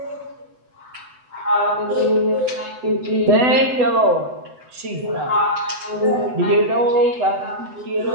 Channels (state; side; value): late; left; 7.9 ms